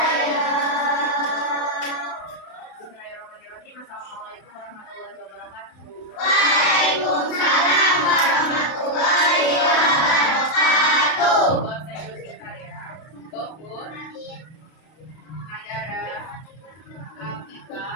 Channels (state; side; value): late; right; 32 ms